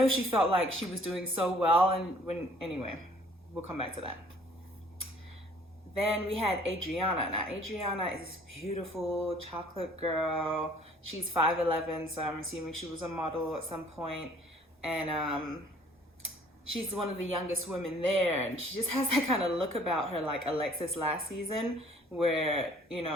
she felt like she was doing so well. And anyway, we'll come back to that. Then we had Adriana. Now, Adriana is this beautiful chocolate girl. She's 5'11", so I'm assuming she was a model at some point. And she's one of the youngest women there, and she just has that kind of look about her like Alexis last season, where, you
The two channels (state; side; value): normal; both; correlation 0.56